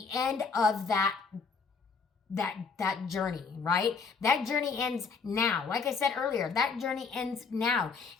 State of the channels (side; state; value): right; quieter; 5.0 dB